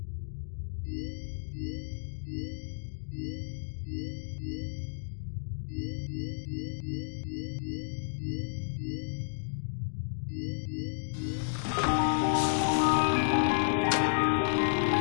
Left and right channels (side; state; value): right; silent; digital silence